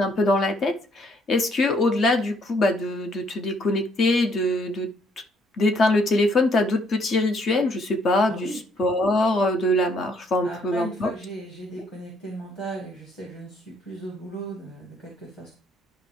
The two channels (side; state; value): both; normal; correlation 0.68